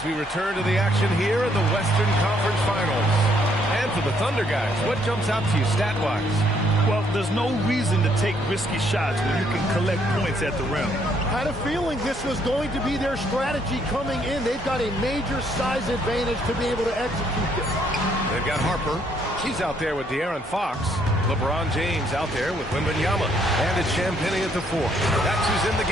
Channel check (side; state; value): both; normal; correlation 0.69